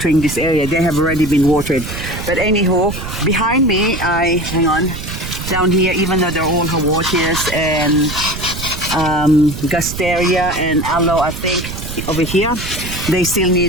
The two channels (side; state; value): right; noise; rumble, 8 dB below the sound